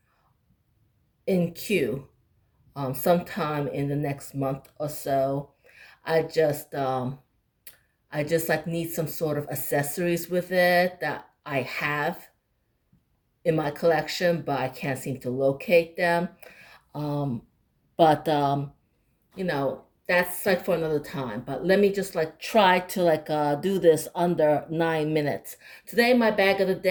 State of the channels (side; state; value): both; identical; correlation 1.00